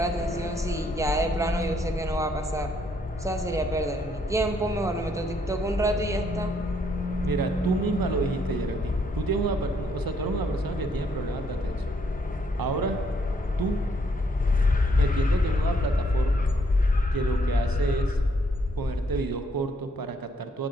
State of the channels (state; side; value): normal; both; correlation 0.70